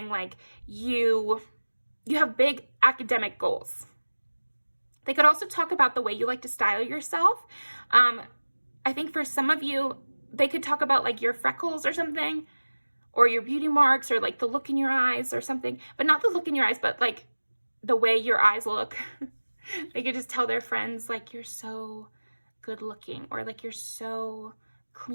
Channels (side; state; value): both; inverted; correlation -1.00